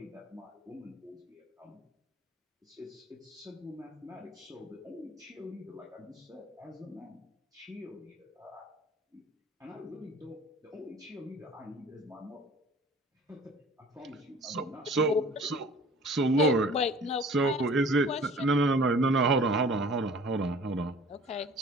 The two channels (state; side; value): normal; both; correlation 0.47